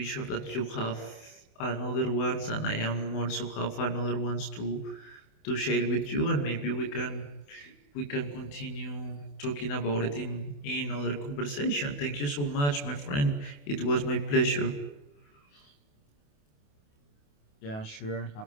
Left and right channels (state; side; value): late; right; 28 ms